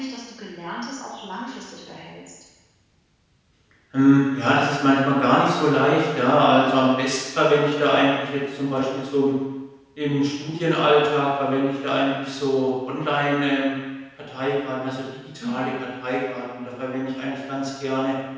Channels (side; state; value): both; identical; correlation 1.00